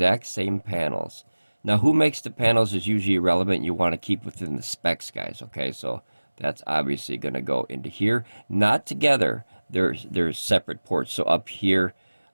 same panels. Now, who makes the panels is usually irrelevant. You want to keep within the specs, guys, okay? So that's obviously going to go into here. Not together. There's separate ports. So up here,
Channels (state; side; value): inverted; both; correlation -1.00